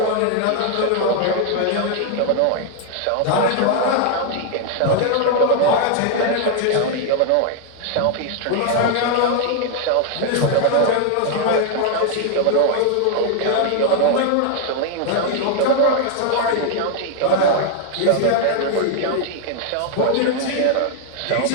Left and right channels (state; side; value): different; both; correlation 0.00